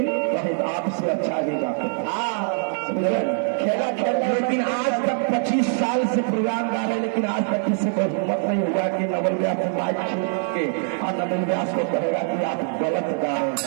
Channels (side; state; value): left; silent; 63 dB below the other